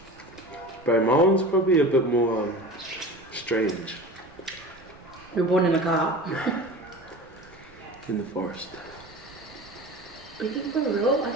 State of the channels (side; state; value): right; noise; rumble, 24 dB below the sound